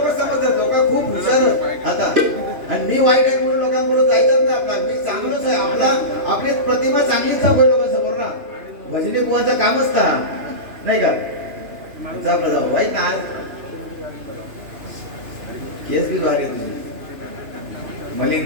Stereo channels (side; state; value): left; late; 2.9 ms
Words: समजतात लोक खूप हुशार आता आणि मी वाईट आहे म्हणून लोकांबरोबर जायचंच नाही. आपला मी चांगलोच आहे आपला आपली प्रतिमा चांगलीच दाखवली लोकांसमोर ना. भजनी बुवाचं कामच का नाही का वाईट ना. आज केस बी भारी तुझी